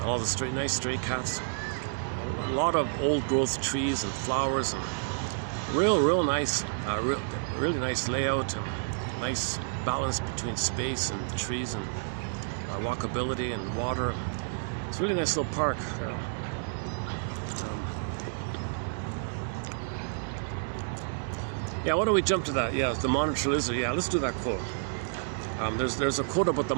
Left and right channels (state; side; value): silent; left; digital silence